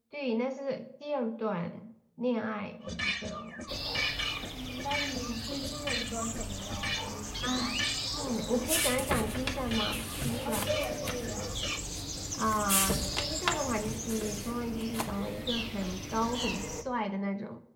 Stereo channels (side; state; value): both; identical; correlation 1.00